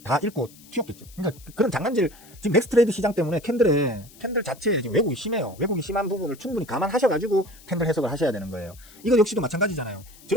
다 잃고 튀었겠죠. 그러니까 그런 장난질 지금 넥스트레이드 시장 때문에 캔들 자체에 지금 왜곡이 심해요. 왜곡이 심한 부분을 충분히 감안하셔가지고 캔들 해석을 하셔야 되는 거예요. 이거 역시도 마찬가지잖아요.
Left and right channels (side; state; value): left; noise; hiss, 23 dB below the sound